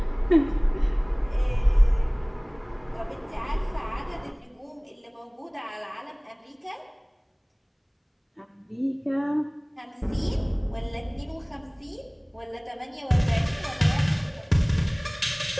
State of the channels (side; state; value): both; identical; correlation 1.00